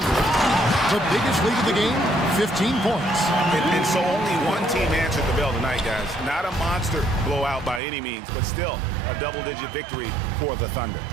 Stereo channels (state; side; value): drops out; left; at 7.8 s